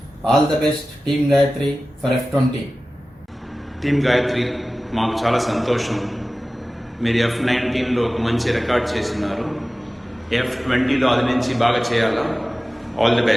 All the best team Gayatri for F20. Team Gayatri మాకు చాలా సంతోషం. మీరు F19లో ఒక మంచి రికార్డ్ చేస్తున్నారు. F20లో అది నుంచి బాగా చేయాలా. All the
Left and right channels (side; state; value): both; normal; correlation 0.96